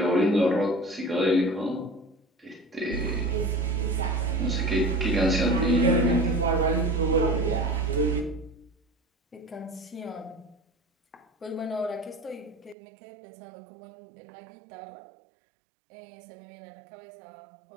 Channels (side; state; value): left; drops out; at 12.8 s